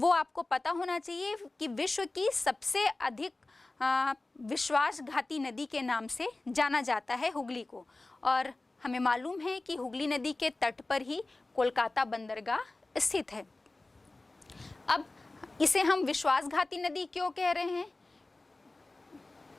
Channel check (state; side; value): quieter; right; 3.0 dB